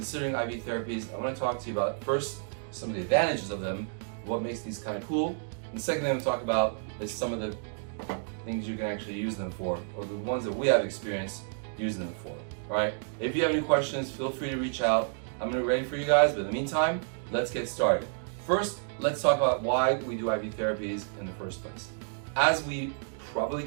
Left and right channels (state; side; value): silent; left; digital silence